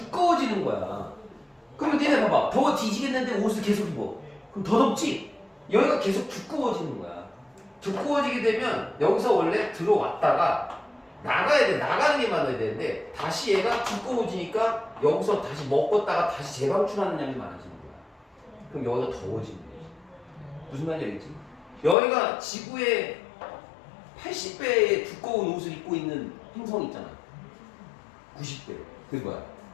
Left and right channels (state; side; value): drops out; right; at 22.0 s